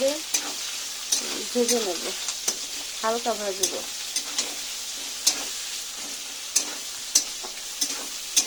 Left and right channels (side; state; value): both; identical; correlation 1.00